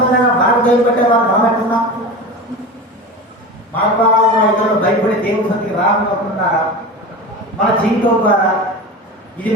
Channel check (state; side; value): normal; both; correlation 0.29